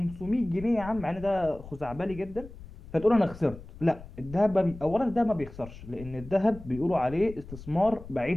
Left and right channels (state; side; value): noise; left; rumble, 15 dB below the sound